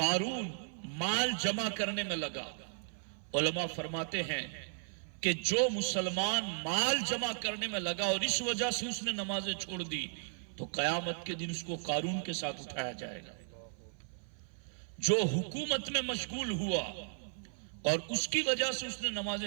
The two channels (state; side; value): silent; left; 54 dB below the other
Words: مال جمع کرنے میں لگا۔ علماء فرماتے ہیں کہ جو مسلمان مال جمع کرنے میں لگا اور اس وجہ سے اس نے نمازیں چھوڑ دی تو قیامت کے دن اس کو قارون کے ساتھ اٹھایا جائے گا۔ جو حکومت میں مشغول ہوا اور اس کی وجہ سے اس نے